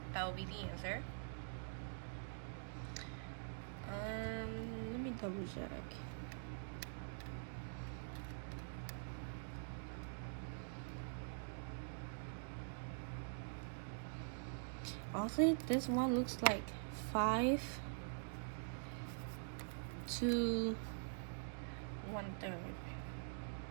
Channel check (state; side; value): silent; left; digital silence